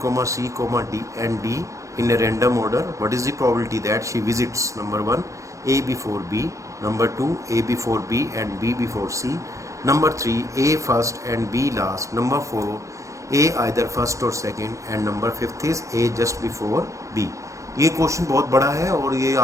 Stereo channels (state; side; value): late; left; 0.15 ms